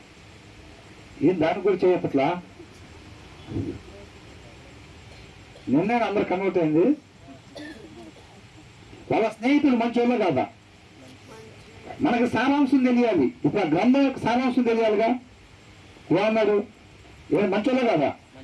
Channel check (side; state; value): both; identical; correlation 1.00